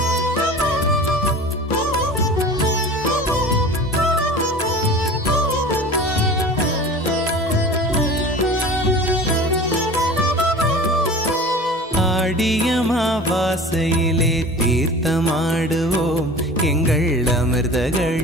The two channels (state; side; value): normal; both; correlation 0.39